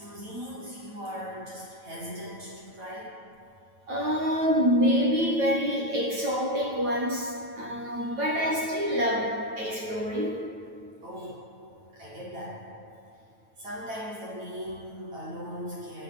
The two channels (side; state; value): left; late; 9.0 ms